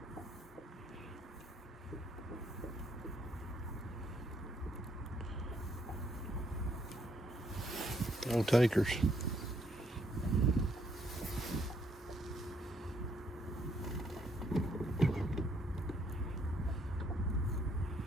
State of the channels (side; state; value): both; normal; correlation 0.71